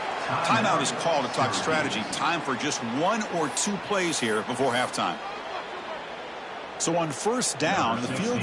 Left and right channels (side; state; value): both; identical; correlation 1.00